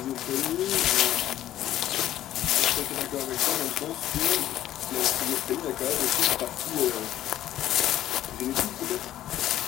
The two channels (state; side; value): quieter; right; 12.8 dB